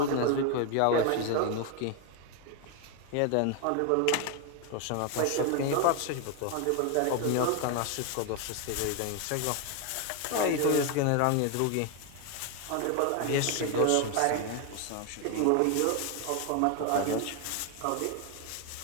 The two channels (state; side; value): different; both; correlation 0.01